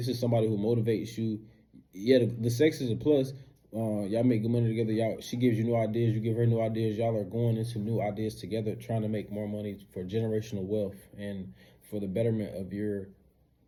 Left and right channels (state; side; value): identical; both; correlation 1.00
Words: is somebody who motivates you. Yeah, the sex is a plus. Y'all make good money together. She gives you new ideas. You give her new ideas. Y'all are going into new ideas together, trying to make more money for generational wealth and for the betterment of your